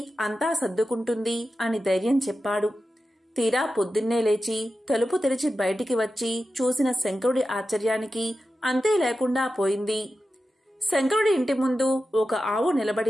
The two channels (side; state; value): both; normal; correlation 0.92